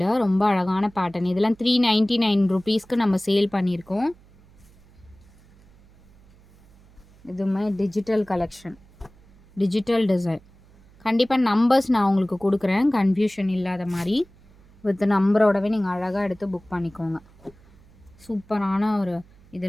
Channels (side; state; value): right; noise; hum, 27 dB below the sound